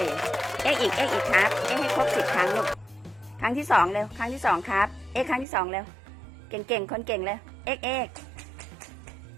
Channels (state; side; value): drops out; left; at 5.5 s